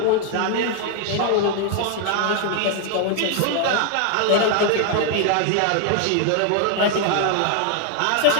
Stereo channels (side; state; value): both; different; correlation 0.00